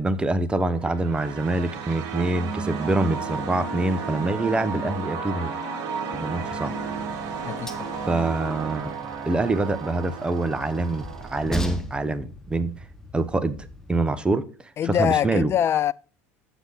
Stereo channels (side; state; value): both; normal; correlation 0.72